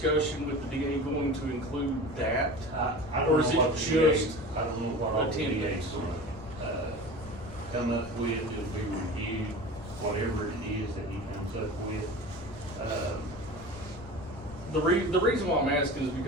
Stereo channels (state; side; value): noise; left; rumble, 16 dB below the sound